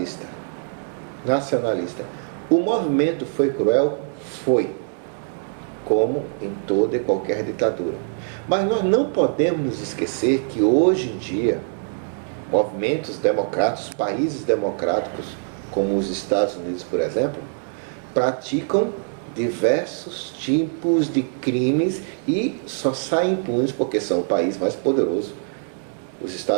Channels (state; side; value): silent; left; digital silence